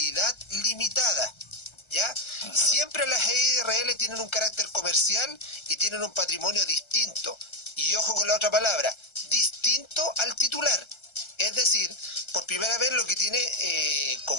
limitada, ¿ya? Siempre las EIRL tienen un carácter comercial y tienen un patrimonio distinto, y ojo con la otra palabra, distinto al titular. Es decir, por primera vez lo que tiene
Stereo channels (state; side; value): late; right; 1.3 ms